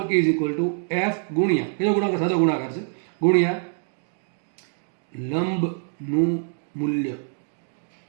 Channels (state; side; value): silent; left; digital silence